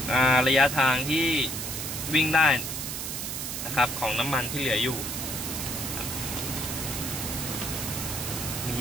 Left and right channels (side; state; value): right; noise; hiss, 4 dB below the sound